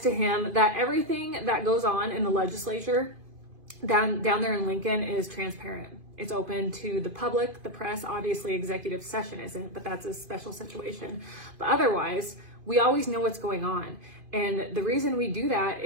to him that everything that goes on in the legislature down there in Lincoln is transparent. It's open to the public, the press. Obviously, executive session isn't, but that's a special situation. But otherwise, we always know what's going on. And the reason we do that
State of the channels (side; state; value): left; late; 2.5 ms